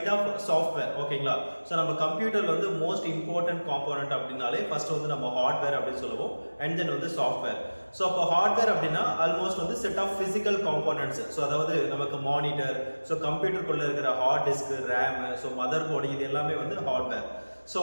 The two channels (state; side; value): inverted; both; correlation -1.00